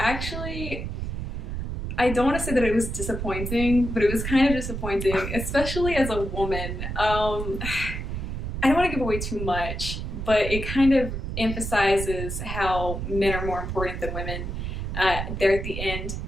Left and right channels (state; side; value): noise; right; rumble, 4 dB below the sound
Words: I don't want to say that it was disappointing, but it was kind of disappointing, especially as a woman. I don't want to give away too much, but it kind of emphasizes how men are more important than women there at the end.